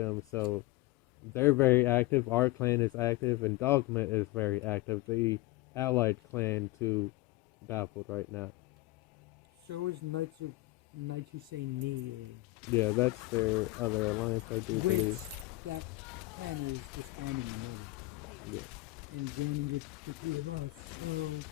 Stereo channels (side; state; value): right; quieter; 19.4 dB